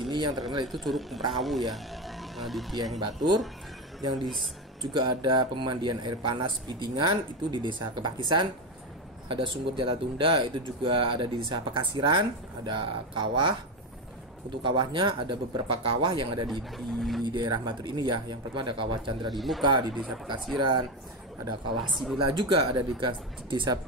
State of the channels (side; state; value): both; normal; correlation 0.14